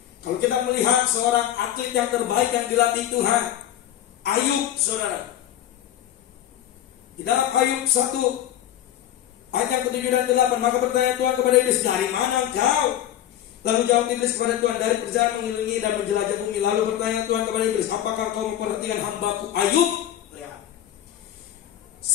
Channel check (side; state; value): right; quieter; 11.8 dB